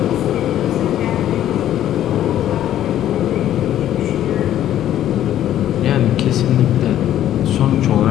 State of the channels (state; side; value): quieter; right; 11.8 dB